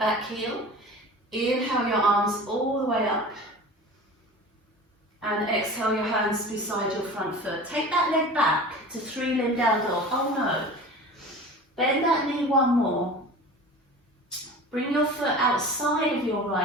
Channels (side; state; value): both; normal; correlation 0.37